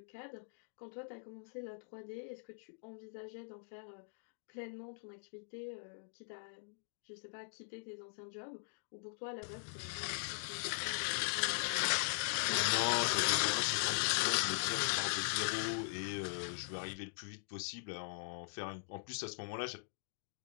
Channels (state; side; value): silent; right; digital silence